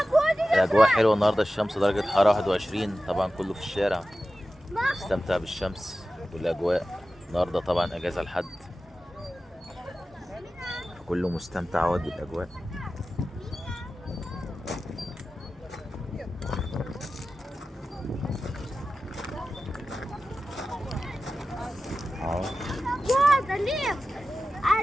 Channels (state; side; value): normal; both; correlation 0.94